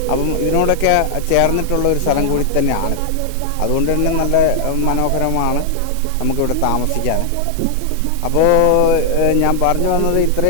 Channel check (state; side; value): different; both; correlation 0.00